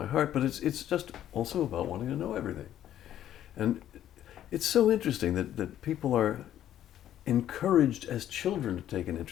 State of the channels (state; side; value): quieter; right; 11.5 dB